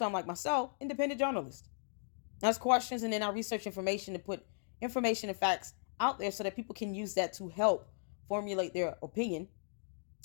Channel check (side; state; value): right; silent; digital silence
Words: like myself, independent journalists. Ask questions and then I research information to put information and facts out there so that people can use that to help formulate their opinion